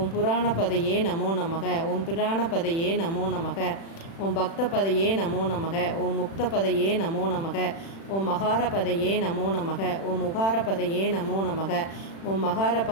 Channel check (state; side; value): late; right; 36 ms